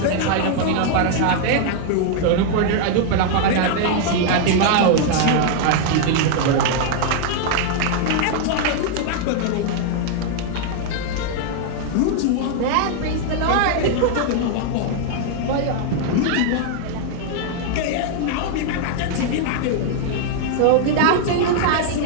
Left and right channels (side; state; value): both; different; correlation 0.00